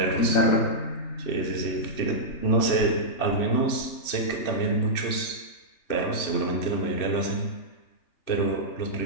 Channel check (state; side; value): late; right; 3.3 ms